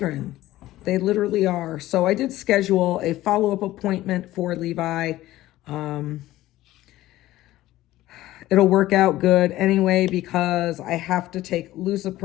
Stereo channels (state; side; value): quieter; right; 15.8 dB